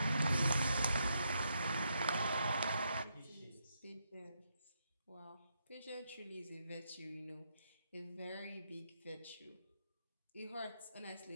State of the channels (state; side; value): inverted; both; correlation -0.80